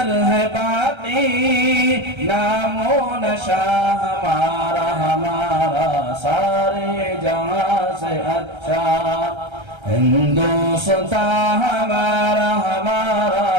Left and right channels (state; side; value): late; left; 1.3 ms